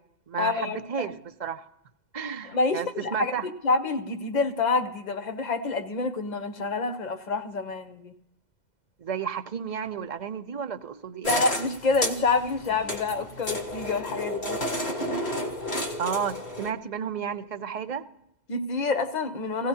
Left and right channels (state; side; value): late; right; 2.0 ms